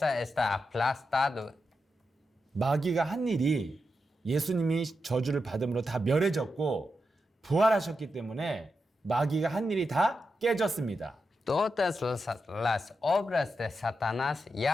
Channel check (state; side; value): normal; both; correlation 0.87